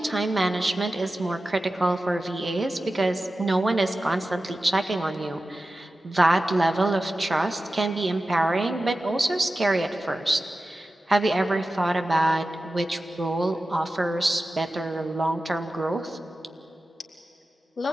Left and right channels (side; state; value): both; normal; correlation 0.94